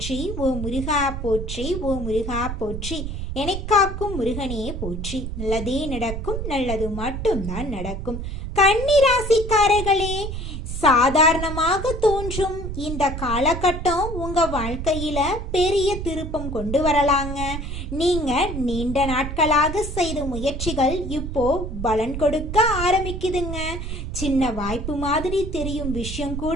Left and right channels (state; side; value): noise; right; rumble, 6 dB below the sound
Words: ஓ முருகா போற்றி, ஓ முருகா போற்றி, எனக்காக்கும் முருகனே போற்றி. நல்லதே நடக்கும், நல்லது மட்டும்தான் நடக்கும். கன்னிராசிக்காரர்களே, சாதாரணமாக தோன்றும் இந்த காலகட்டம் உங்க வாழ்க்கையில பெரிய திருப்பம் கொண்டு வரலாங்க. நீங்க நீண்ட நாட்களாக செய்த முயற்சிகள் இப்போ பலன் கொடுக்க ஆரம்பிக்குதுங்க. சின்ன வாய்ப்பு மாதிரி தெரியும் விஷயம்